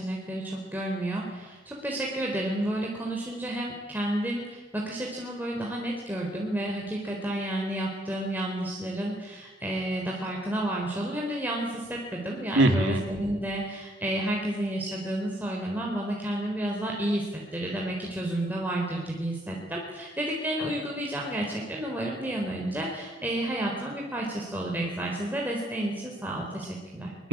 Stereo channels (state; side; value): normal; both; correlation 0.67